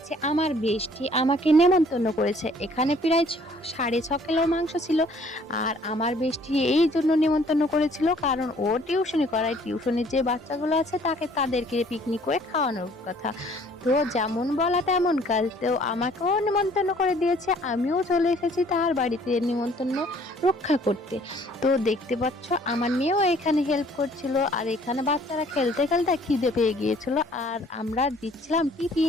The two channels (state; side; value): normal; both; correlation 0.58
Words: আমার বেস্টি আমাকে নেমন্তন্ন করেছে। এখানে প্রায় 6.5 কিলো মাংস ছিল। আর আমার বেস্টি এই জন্য নেমন্তন্ন করেছিল কারণ ও টিউশনি করায়। টিউশনির যে বাচ্চাগুলো আছে তাদেরকে পিকনিক করে খাওয়ানোর কথা। তো যেমন বলা তেমন কাজ। তো আমাকেও নেমন্তন্ন করে দিয়েছে। আমিও চলে এসেছি তার বাড়িতে নিমন্ত্রণ রক্ষা করতে। তো দেখতে পাচ্ছ আমার মেয়েও এখানে হেল্প করছিল। আর এখানে বাচ্চারা খেলতে খেলতে খিদে পেয়ে গিয়েছিল। আর আমরা দিচ্ছিলাম